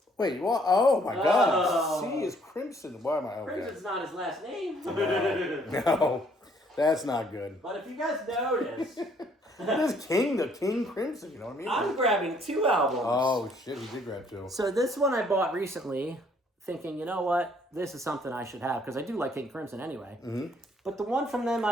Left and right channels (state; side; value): normal; both; correlation 0.64